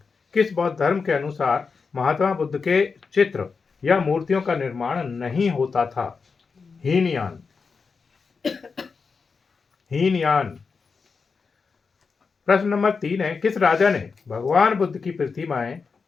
किस बौद्ध धर्म के अनुसार महात्मा बुद्ध के चित्र या मूर्तियों का निर्माण नहीं होता था? हीनयान। हीनयान। प्रश्न नंबर 3 है, किस राजा ने भगवान बुद्ध की प्रतिमाएं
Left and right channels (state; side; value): quieter; right; 5.0 dB